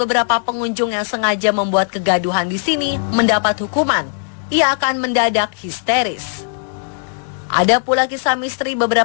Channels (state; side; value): silent; right; 67 dB below the other